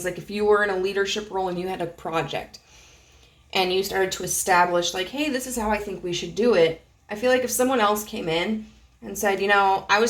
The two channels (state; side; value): identical; both; correlation 1.00